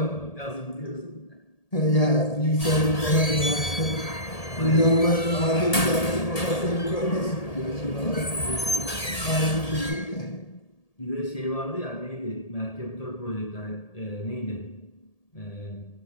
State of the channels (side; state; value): right; late; 1.8 ms